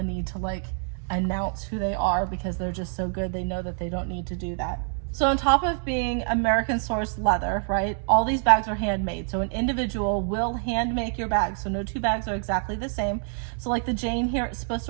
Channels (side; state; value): left; silent; 61 dB below the other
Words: need to announce who they are because they're just so good. They know that they don't need to do that. So on top of being American sourced leather, right, all these bags are handmade. So an individual will hand make your bag. So no two bags are exactly the same. So the Jane here, it's supposed